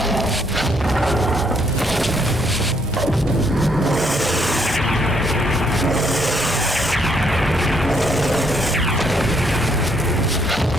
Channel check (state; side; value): normal; both; correlation 0.71